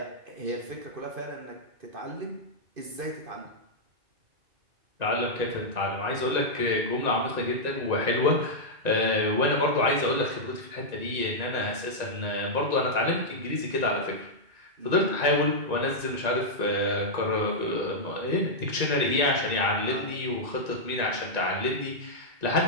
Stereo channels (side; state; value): left; late; 1.9 ms